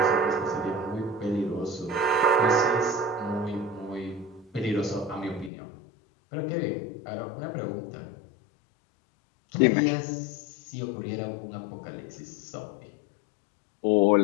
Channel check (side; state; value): right; drops out; at 5.5 s